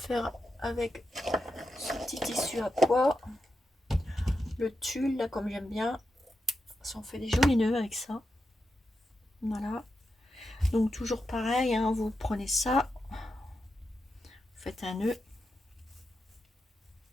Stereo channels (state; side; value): normal; both; correlation 0.88